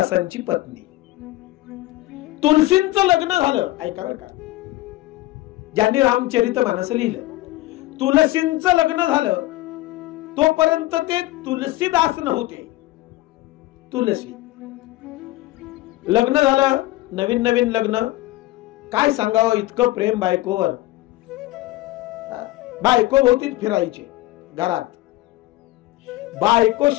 पत्नी, तुलसींचं लग्न झालं. ऐका बरं का, ज्यांनी रामचरितमानस लिहिलं, तुलसींचं लग्न झालं तोपर्यंत ते तुलसीदास नव्हते. तुलसी लग्न झालं, नवीन नवीन लग्न, काय सांगावं, इतकं प्रेम बायकोवर. बायको भोवतीच फिरायचे घरात, बायको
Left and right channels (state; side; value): quieter; right; 18.1 dB